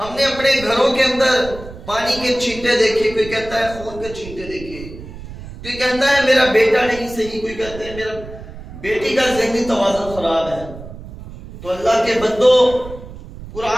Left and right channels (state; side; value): noise; right; rumble, 14 dB below the sound